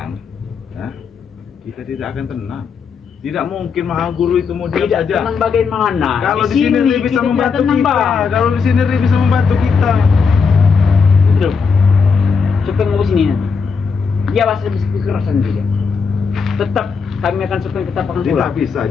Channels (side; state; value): right; quieter; 5.5 dB